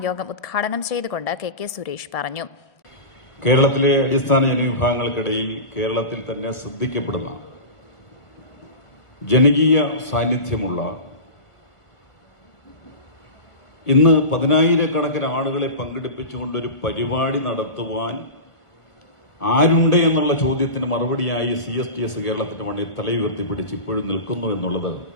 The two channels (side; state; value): right; late; 1.5 ms